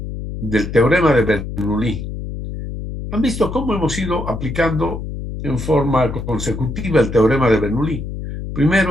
del teorema de Bernoulli. ¿Han visto cómo hemos ido aplicando en forma consecutiva el teorema de Bernoulli?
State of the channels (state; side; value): noise; left; hum, 7 dB below the sound